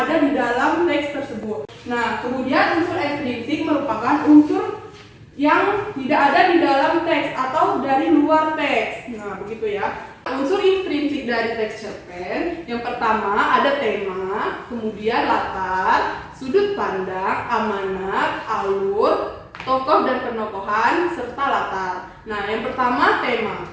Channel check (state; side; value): identical; both; correlation 1.00